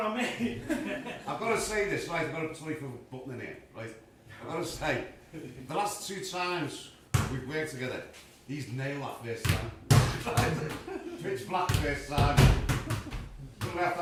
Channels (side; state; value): both; identical; correlation 1.00